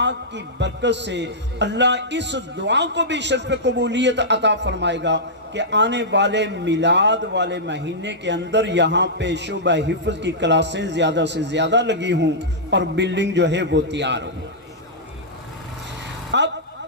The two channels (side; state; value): both; normal; correlation -0.12